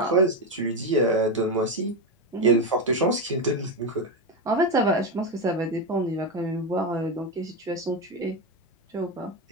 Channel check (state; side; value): normal; both; correlation 0.11